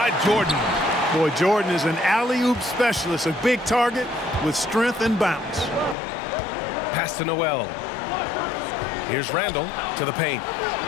Jordan. Boy, Jordan is an alley-oop specialist, a big target with strength and bounce. Pass to Noel. Here's Randall to the paint.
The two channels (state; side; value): drops out; right; at 6.0 s